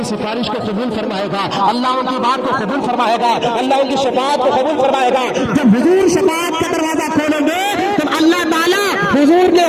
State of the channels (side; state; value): both; identical; correlation 1.00